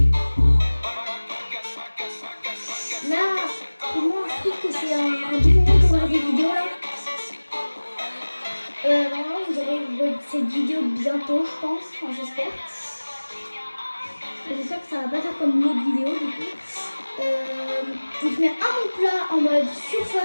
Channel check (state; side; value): inverted; both; correlation -1.00